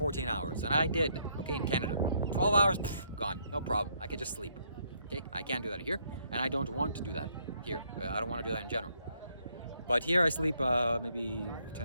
hours. And I did, okay, in Canada. 12 hours, gone. No problem. I could just sleep. Okay, I can't do that here. And I don't want to do that here. I don't want to do that in general. But here I sleep maybe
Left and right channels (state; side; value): inverted; both; correlation -0.71